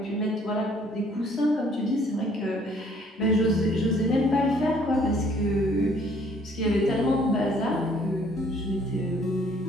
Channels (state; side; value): normal; both; correlation 0.60